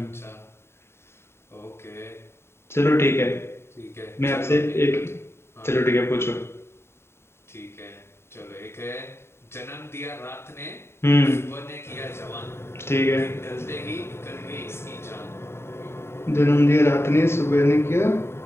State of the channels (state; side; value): late; right; 0.12 ms